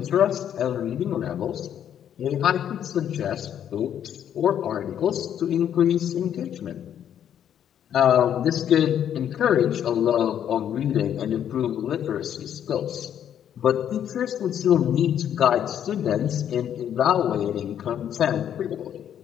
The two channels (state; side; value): quieter; right; 9.7 dB